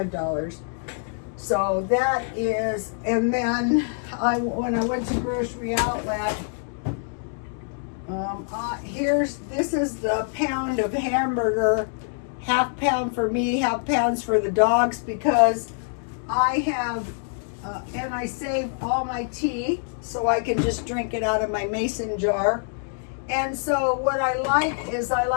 So that is, and then when I went to Grocery Outlet, this is the pound of half pound for me, half pounds for the dogs, because I have, and I save all my tea so I can just drink it out of my mason jar. And so what I like is I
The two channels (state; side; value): silent; right; 62 dB below the other